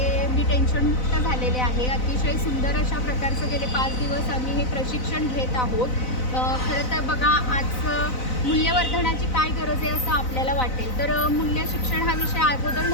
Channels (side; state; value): right; late; 4.0 ms